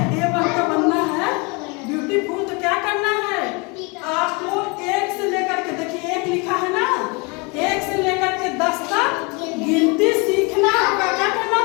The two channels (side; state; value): right; quieter; 29.7 dB